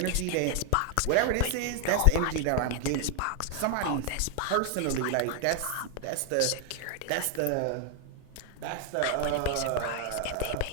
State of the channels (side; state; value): both; different; correlation 0.00